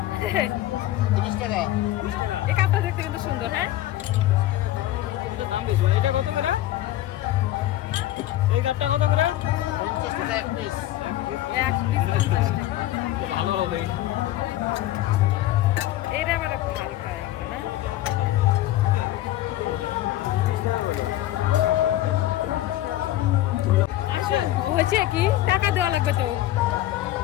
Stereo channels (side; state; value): right; quieter; 14.6 dB